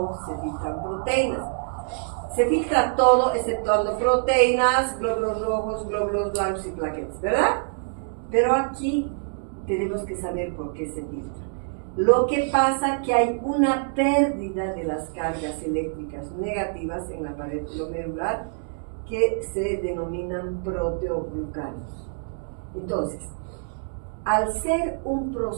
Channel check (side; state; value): left; silent; digital silence